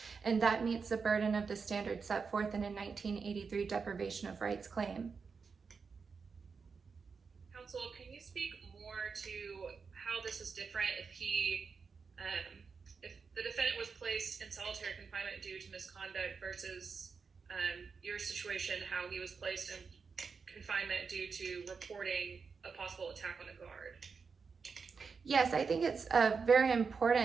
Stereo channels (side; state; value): left; quieter; 5.3 dB